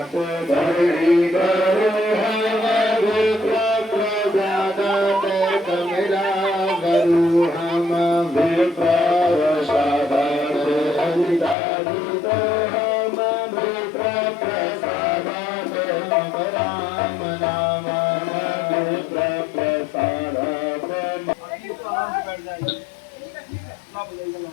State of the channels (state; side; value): drops out; right; at 11.6 s